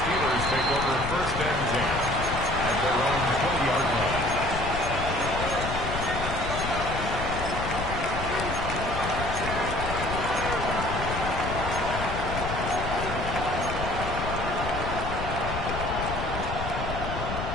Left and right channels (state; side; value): noise; left; rumble, 5 dB below the sound